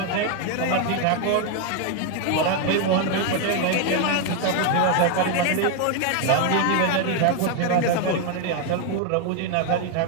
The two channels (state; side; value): different; both; correlation 0.01